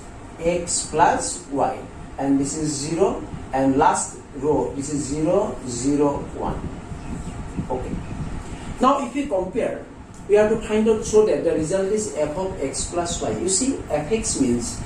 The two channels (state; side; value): identical; both; correlation 1.00